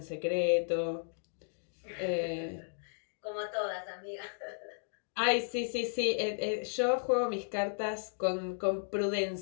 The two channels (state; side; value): silent; right; digital silence